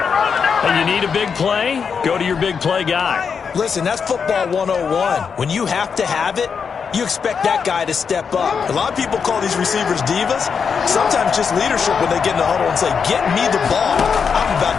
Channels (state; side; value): quieter; right; 6.2 dB